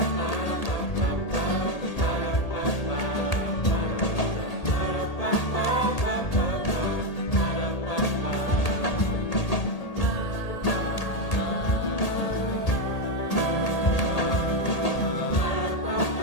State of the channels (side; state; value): right; late; 1.8 ms